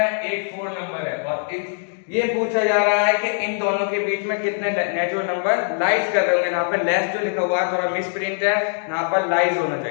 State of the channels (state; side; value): silent; right; 64 dB below the other